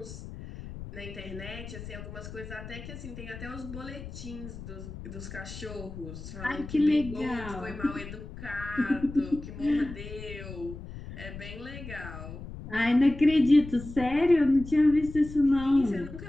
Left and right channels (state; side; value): noise; left; rumble, 12 dB below the sound